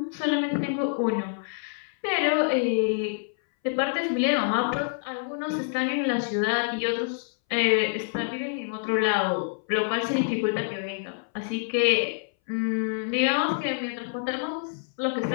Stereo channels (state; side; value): silent; right; 60 dB below the other